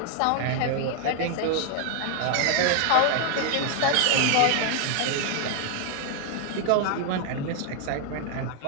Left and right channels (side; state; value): both; different; correlation 0.00